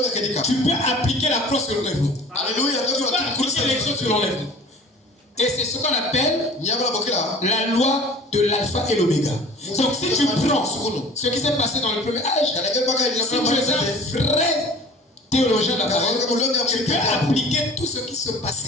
tu peux appliquer la croix sur l'enlèvement. Tu peux appliquer l'exode sur l'enlèvement. Et c'est ce qu'on appelle la loi de l'alpha et l'oméga. Donc si tu prends ce qui s'est passé dans le premier âge, si tu es un vrai théologien de la parole, tu peux appliquer tout ce qui se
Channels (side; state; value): both; normal; correlation 0.45